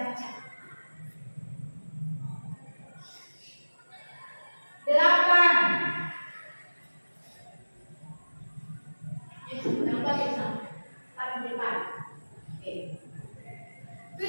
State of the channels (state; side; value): inverted; both; correlation -1.00